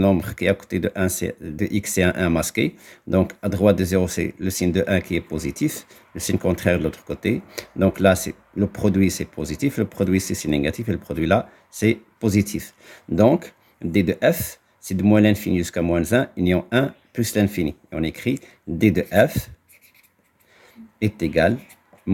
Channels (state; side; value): identical; both; correlation 1.00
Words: qui est à côté de 1, de x, c'est un 1 masqué. Donc à droite de 0, c'est le signe de 1 qui est positif. Le signe contraire de l'autre côté. Donc là, le produit, c'est positif. Le produit, c'est négatif. Et le produit là, c'est positif. Donc d de f, c'est de moins l'infini jusqu'à moins 1, union 1 plus l'infini. Et on écrit d de f est égal